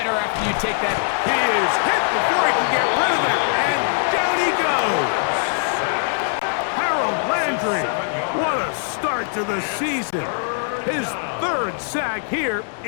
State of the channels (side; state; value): right; silent; digital silence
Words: after you take that. He is hit before he can get rid of it, and down he goes. Harold Landry, what a start to the season. His 3rd sack here